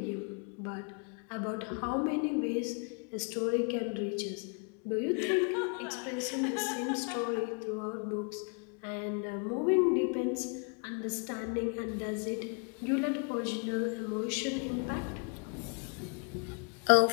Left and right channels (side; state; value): right; quieter; 38.5 dB